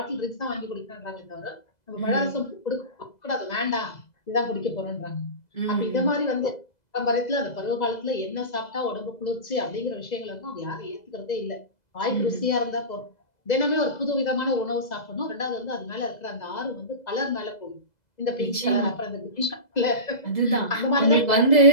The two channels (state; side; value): late; right; 2.0 ms